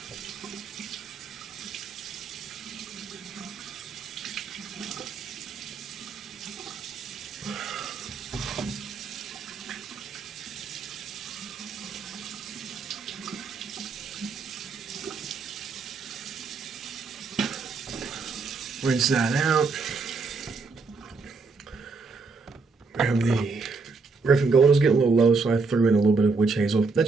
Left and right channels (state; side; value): quieter; left; 4.3 dB